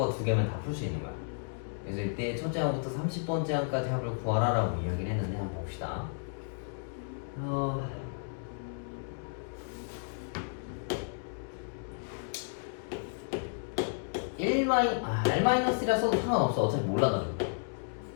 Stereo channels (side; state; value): right; silent; digital silence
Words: 두 개면 다 풀 수 있는 거야. 그래서 이때 첫째 항부터 30번째 항까지 합을 구하라라고 이야기를 했는데 한번 봅시다. R-1이라서도 상관없어. 어차피 몰라가지고.